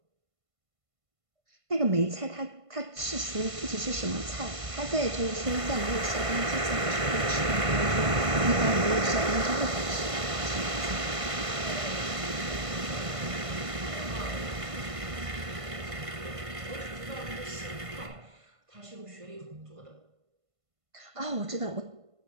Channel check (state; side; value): late; left; 1.5 ms